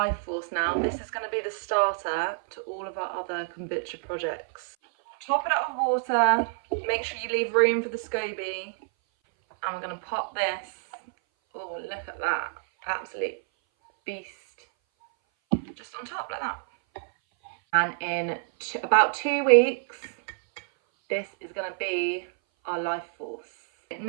force now. This is going to be the starter to all of our other kombucha projects. Top it up with water, make sure you leave room for the scoby, and we're going to pop this. Oh, look at that, absolute beast. Just on top like that. And in about 2 weeks, this is going to be our life force.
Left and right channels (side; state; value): left; silent; 57 dB below the other